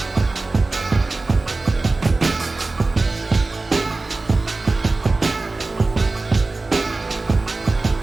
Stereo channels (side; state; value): left; quieter; 3.4 dB